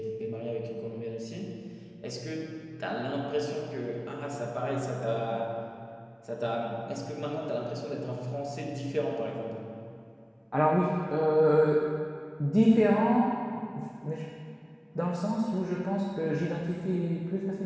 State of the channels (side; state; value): both; identical; correlation 1.00